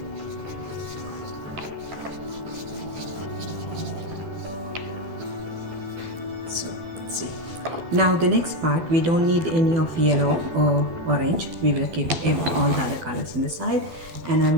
So see, now the next part, we don't need any of yellow or orange. We will keep all the other colors in the side, and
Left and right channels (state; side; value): late; left; 12 ms